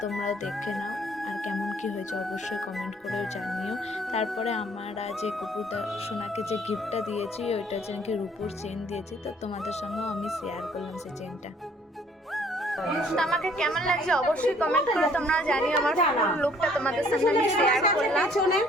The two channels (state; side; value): normal; both; correlation 0.59